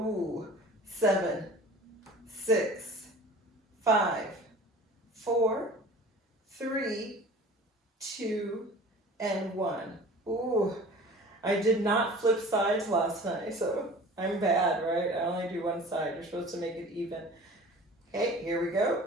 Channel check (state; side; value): normal; both; correlation 0.42